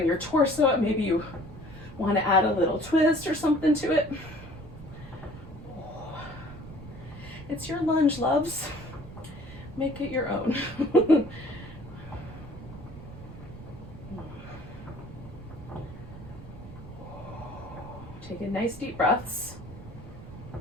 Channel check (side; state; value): right; noise; rumble, 14 dB below the sound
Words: your torso up? Maybe you wanna add a little twist or something to it. It's your lunge, loves. Make it your own. Taking nice deep breaths.